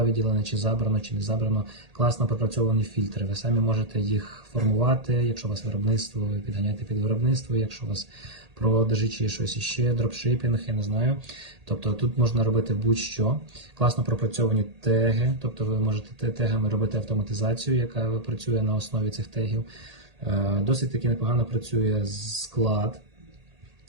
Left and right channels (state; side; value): late; left; 1.8 ms